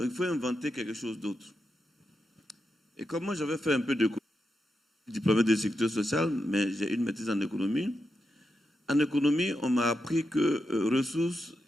il faut inventer quelque chose d'autre. Et comme moi, j'avais fait un peu d'économie, diplômé de sécurité sociale, mais j'ai une maîtrise en économie. En économie, on m'a appris que ressources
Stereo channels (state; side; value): normal; both; correlation 0.86